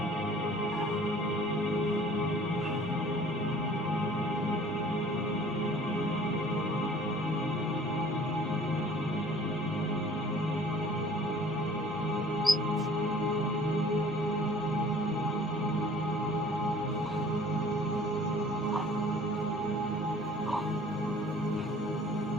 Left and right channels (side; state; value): both; normal; correlation 0.51